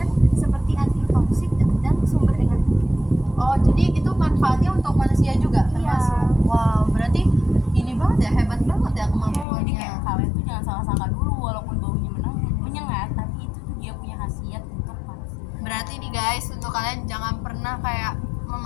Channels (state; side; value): drops out; right; at 9.5 s